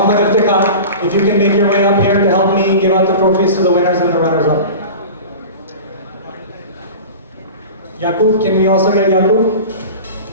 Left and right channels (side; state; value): both; inverted; correlation -0.34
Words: Iftikhar, if you can make your way up here to help me give out the trophies to the winners and the runners-up. Yaqub, can we also get Yaqub?